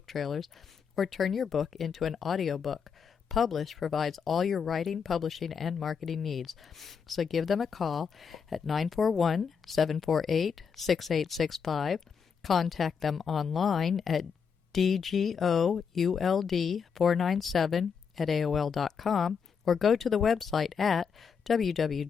trailers, or turn your book into an audiobook. Publish provides all your writing, publishing, and marketing needs. So give them a call at 941-748-6865. Contact them online at dgould497@aol.com, or go to the website at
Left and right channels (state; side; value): quieter; right; 6.4 dB